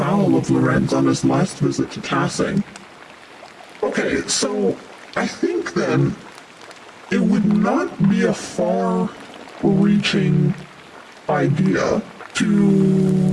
of Lorenz on his last visit to Tassing. Okay, so I think then it would not be a far-reaching idea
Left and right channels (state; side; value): identical; both; correlation 1.00